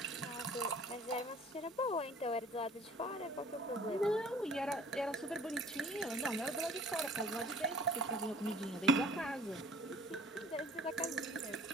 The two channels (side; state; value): both; normal; correlation 0.51